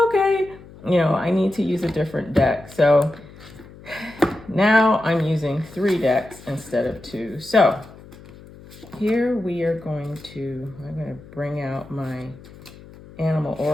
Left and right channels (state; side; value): noise; left; hum, 20 dB below the sound